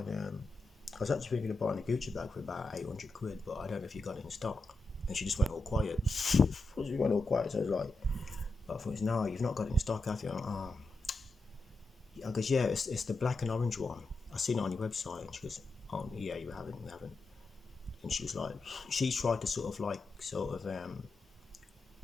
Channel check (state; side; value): quieter; right; 3.1 dB